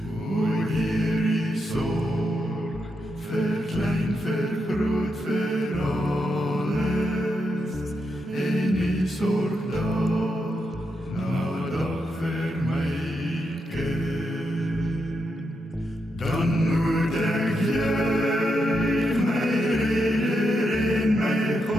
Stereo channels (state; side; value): normal; both; correlation 0.83